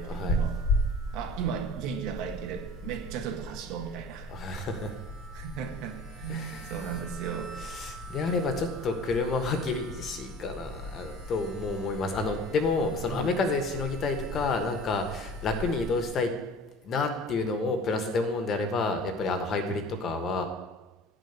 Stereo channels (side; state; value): both; normal; correlation 0.42